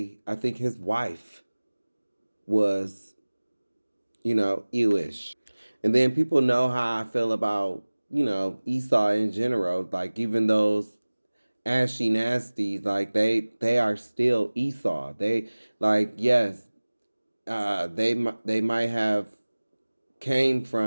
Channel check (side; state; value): both; inverted; correlation -1.00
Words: I think his wife was, you know, Jewish. And then people know how I feel about, you know, Esau in general. Like, even those ashy nasties, like they are still Esau. They, like, yes, they might have came